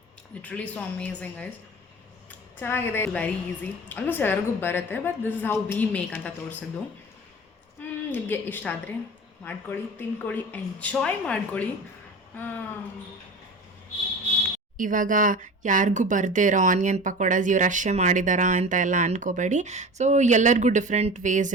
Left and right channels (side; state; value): both; normal; correlation 0.34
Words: literally so amazing guys. ಚೆನ್ನಾಗಿದೆ. ವೆರಿ ಈಸಿ, ಆಲ್ಮೋಸ್ಟ್ ಎಲ್ಲರಿಗೂ ಬರುತ್ತೆ. But this is how we make ಅಂತ ತೋರಿಸಿದ್ದು. ನಿಮಗೆ ಇಷ್ಟ ಆದರೆ ಮಾಡ್ಕೊಳ್ಳಿ, ತಿನ್ಕೊಳ್ಳಿ, ಎಂಜಾಯ್ ಮಾಡ್ಕೊಳ್ಳಿ. ಇವಾಗ ಯಾರಿಗೂ ಬರದೇ ಇರೋ ಆನಿಯನ್ ಪಕೋಡಾಸ್ ಇವ್ರು ಅಷ್ಟೇ ಮಾಡಿದಾರಾ ಅಂತ ಎಲ್ಲ ಅಂದ್ಕೋಬೇಡಿ. ಸೊ ಎಲ್ಲರಿಗೂ ಡಿಫ್ರೆಂಟ್ ವೇಸ್